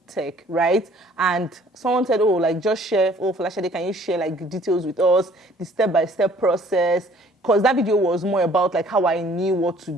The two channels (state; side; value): normal; both; correlation 0.56